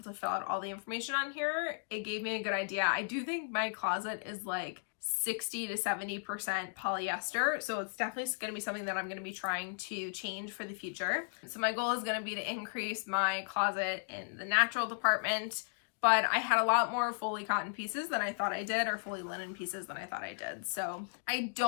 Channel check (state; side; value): silent; right; digital silence